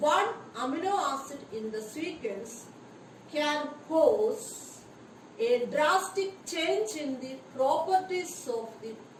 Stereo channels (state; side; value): identical; both; correlation 1.00